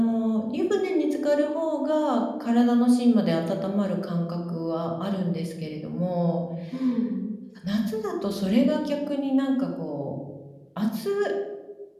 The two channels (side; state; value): both; identical; correlation 1.00